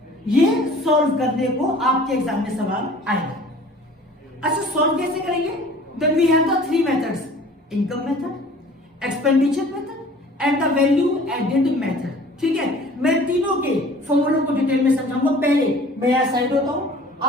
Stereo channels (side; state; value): both; normal; correlation 0.48